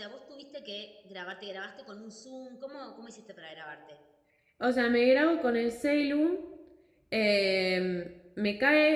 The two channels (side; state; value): both; identical; correlation 1.00